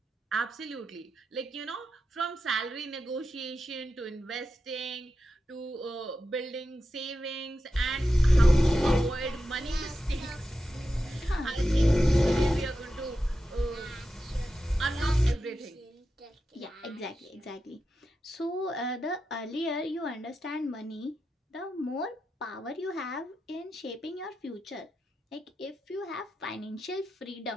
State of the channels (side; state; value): both; normal; correlation 0.90